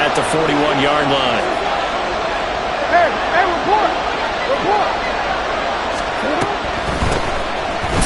the 41-yard line. Hey, report.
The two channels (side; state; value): both; identical; correlation 1.00